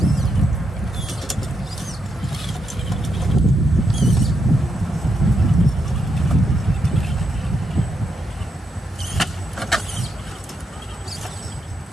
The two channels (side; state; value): both; normal; correlation 0.81